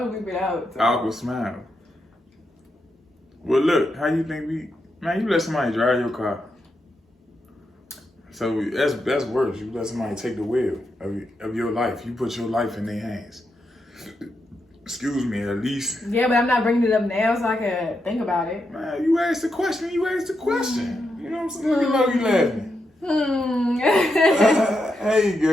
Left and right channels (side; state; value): both; normal; correlation 0.84